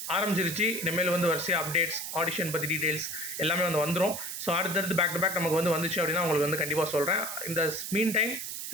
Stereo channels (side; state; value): right; noise; hiss, 6 dB below the sound